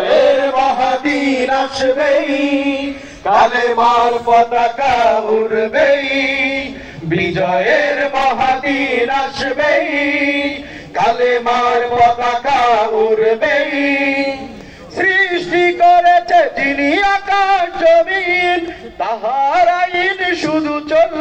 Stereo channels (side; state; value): both; identical; correlation 1.00